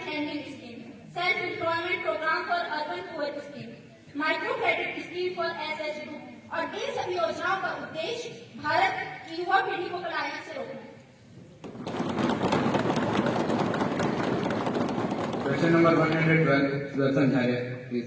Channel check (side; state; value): both; identical; correlation 1.00